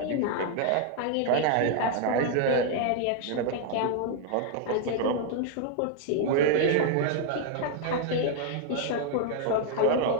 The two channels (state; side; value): different; both; correlation 0.00